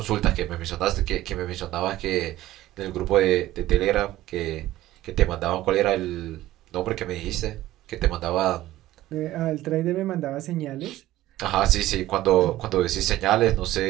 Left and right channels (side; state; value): left; quieter; 15.3 dB